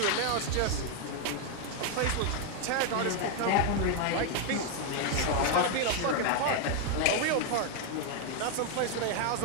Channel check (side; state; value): both; different; correlation 0.00